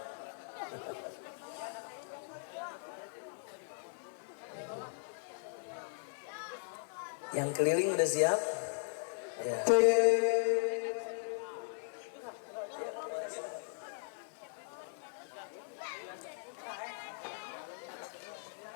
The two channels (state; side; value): silent; right; digital silence